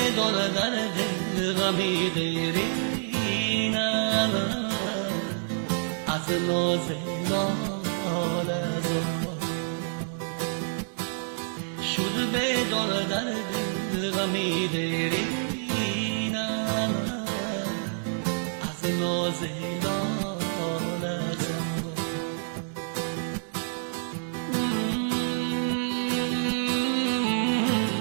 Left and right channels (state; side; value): silent; left; digital silence